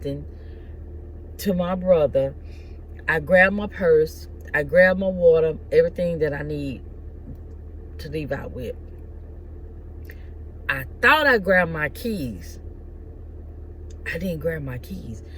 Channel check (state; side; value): identical; both; correlation 1.00